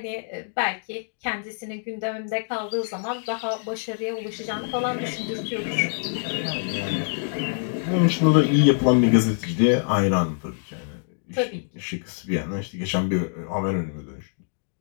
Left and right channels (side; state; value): right; silent; digital silence